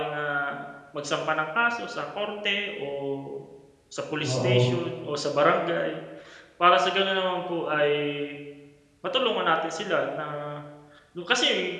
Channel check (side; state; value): both; identical; correlation 1.00